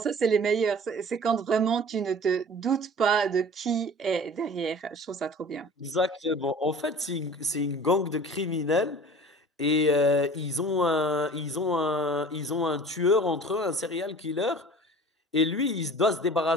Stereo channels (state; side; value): normal; both; correlation 0.43